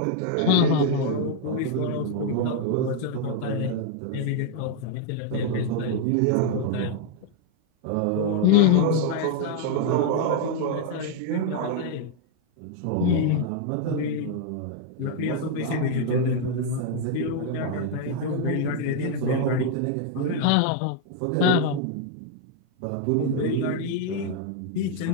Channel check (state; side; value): different; both; correlation 0.00